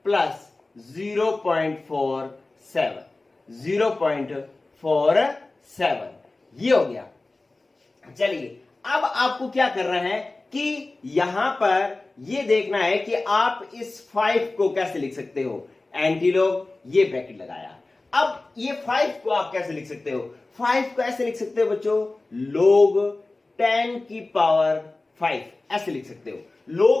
प्लस 0.47 ये हो गया। चलिए अब आपको क्या करना है कि यहां पर ये देखना है कि आप इस 5 को कैसे लिख सकते हो। एंटीलॉग ये ब्रैकेट लगाया, अब ये 5 को आप कैसे लिख सकते हो, 5 को ऐसे लिख सकते हो बच्चों, log 10 की पावर 5 ऐसे लिख सकते हो।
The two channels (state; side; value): quieter; right; 3.2 dB